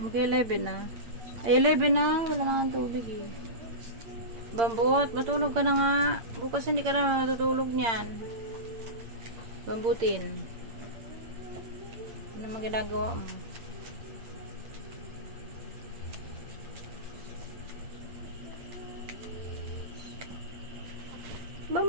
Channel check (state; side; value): late; left; 8.8 ms